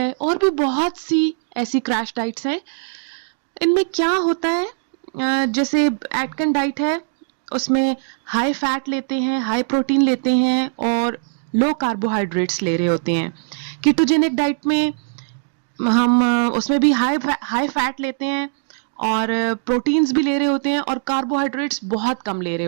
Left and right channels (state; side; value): silent; left; digital silence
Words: और भी बहुत सी ऐसी क्रैश डाइट्स हैं। इनमें क्या होता है, जैसे एटकन डाइट है, उसमें हाई फैट लेते हैं, हाई प्रोटीन लेते हैं और लो कार्बोहाइड्रेट्स ले रहे होते हैं। कीटोजेनिक डाइट में हम उसमें भी हाई फैट लेते हैं और प्रोटीन्स भी ले रहे होते हैं और कार्बोहाइड्रेट्स बहुत कम ले रहे